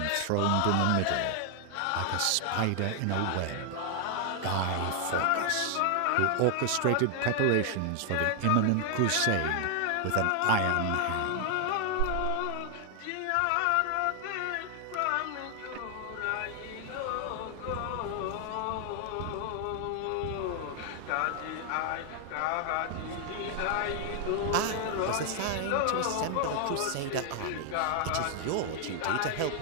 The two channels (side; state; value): both; different; correlation 0.00